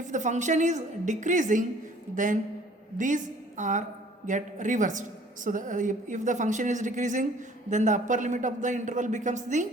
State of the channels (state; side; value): normal; both; correlation 0.54